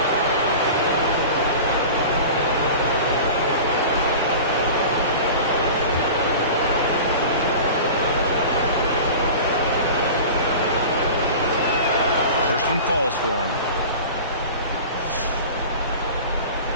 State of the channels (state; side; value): inverted; both; correlation -0.36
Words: First one falls for him.